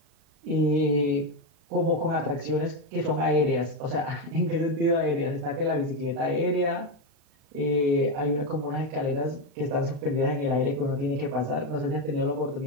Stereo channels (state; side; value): late; left; 36 ms